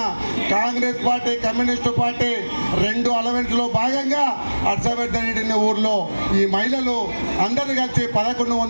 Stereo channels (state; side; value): inverted; both; correlation -1.00